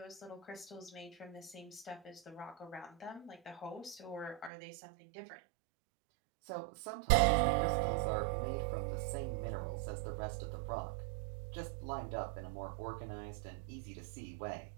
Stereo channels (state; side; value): drops out; left; at 4.5 s